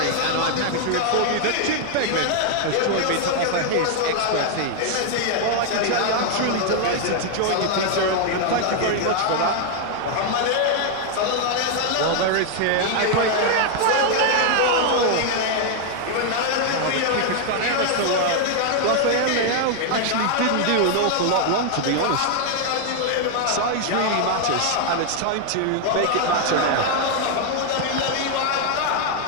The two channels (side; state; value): both; different; correlation 0.00